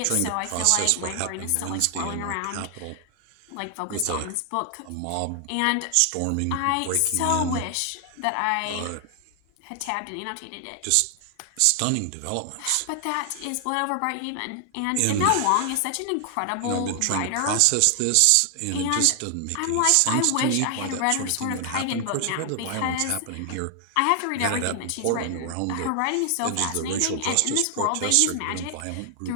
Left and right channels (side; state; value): both; different; correlation 0.00